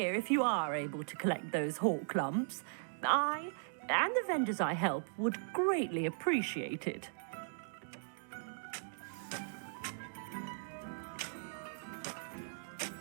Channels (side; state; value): left; silent; digital silence